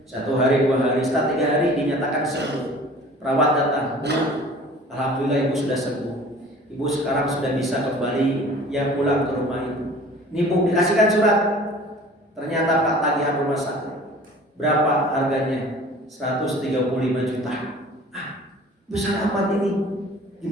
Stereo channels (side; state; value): both; normal; correlation 0.46